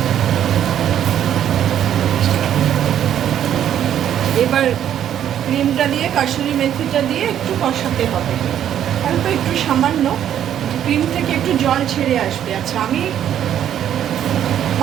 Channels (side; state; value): left; quieter; 10.3 dB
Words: এবার ক্রিমটা দিয়ে কাসুরি মেথিটা দিয়ে একটু কষাতে হবে, অল্প একটু সামান্য, ক্রিম থেকে একটু জল ছেড়ে আসবে। আচ্ছা, আমি